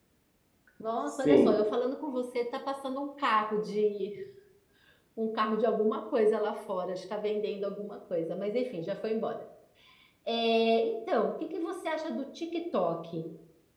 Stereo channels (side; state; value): both; identical; correlation 1.00